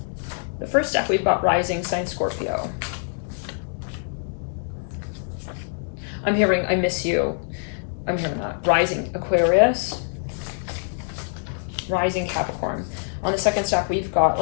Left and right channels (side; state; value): right; silent; digital silence